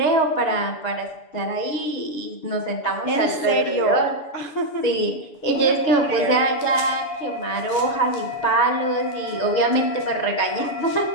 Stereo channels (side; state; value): right; late; 6.9 ms